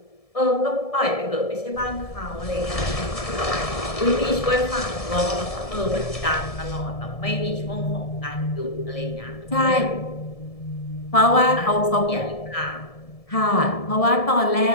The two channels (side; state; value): right; late; 1.7 ms